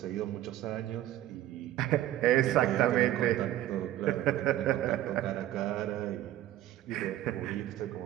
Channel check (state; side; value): quieter; left; 13.6 dB